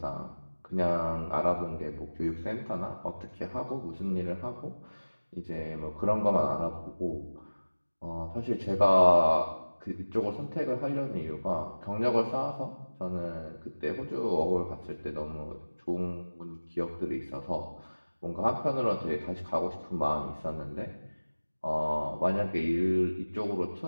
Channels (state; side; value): inverted; both; correlation -1.00